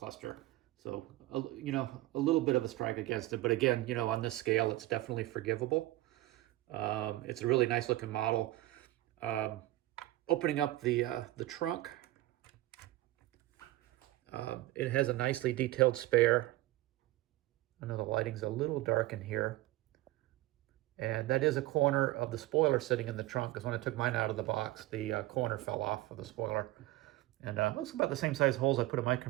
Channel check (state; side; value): quieter; left; 17.1 dB